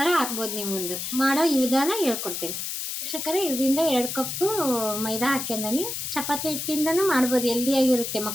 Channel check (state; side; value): noise; left; hiss, 5 dB below the sound